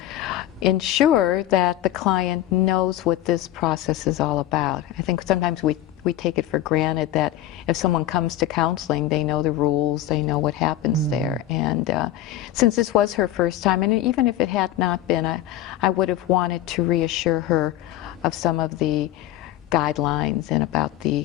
ensure that the client knows what this process is all about. I think sometimes we we take it for granted that if someone comes to counseling, they know the rules, they know what happens there. And since this was her first time, and even if it had not been, I would have wanted to reassure her of some of the guidelines and about the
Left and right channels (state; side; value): quieter; right; 13.1 dB